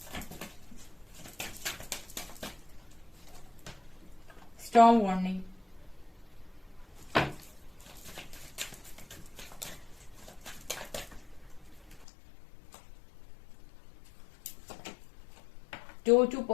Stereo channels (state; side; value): drops out; right; at 12.1 s